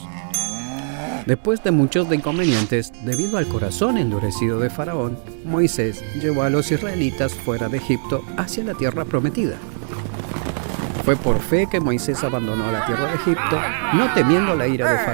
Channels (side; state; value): left; silent; digital silence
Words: Después de muchos inconvenientes, debido al corazón endurecido de Faraón, Moisés llevó a los israelitas fuera de Egipto hacia la tierra prometida. Fue por fe que Moisés abandonó la tierra de Egipto, no temiendo la ira de